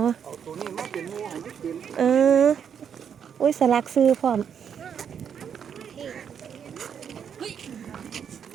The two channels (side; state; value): left; quieter; 7.9 dB